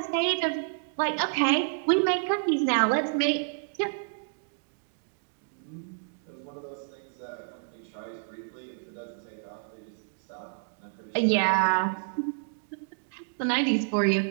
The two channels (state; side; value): silent; left; digital silence